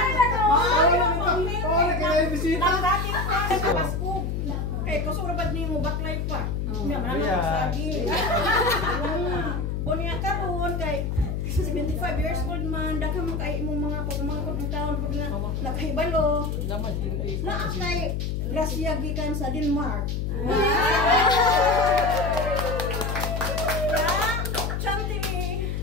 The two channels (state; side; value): noise; left; hum, 1 dB below the sound